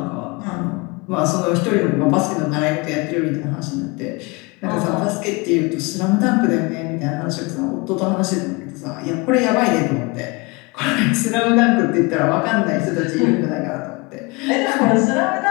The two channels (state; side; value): quieter; right; 26.9 dB